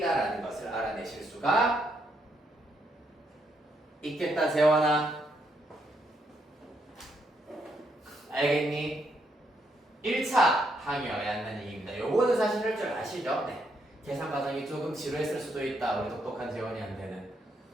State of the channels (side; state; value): both; normal; correlation 0.76